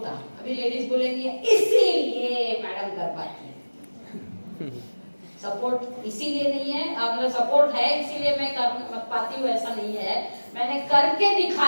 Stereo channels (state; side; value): inverted; both; correlation -1.00